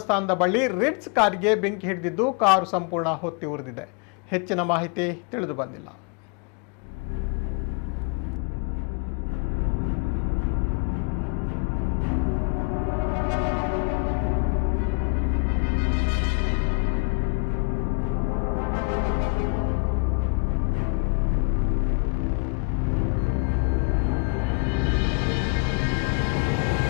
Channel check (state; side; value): quieter; right; 34.6 dB